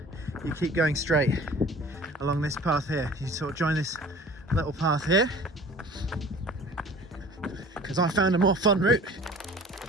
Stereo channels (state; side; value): normal; both; correlation 0.45